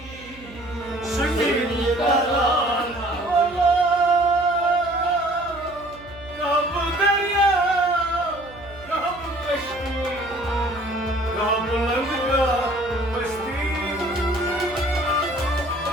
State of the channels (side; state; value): right; noise; hum, 20 dB below the sound